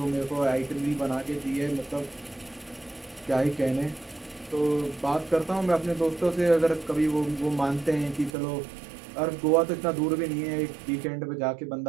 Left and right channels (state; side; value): drops out; left; at 8.3 s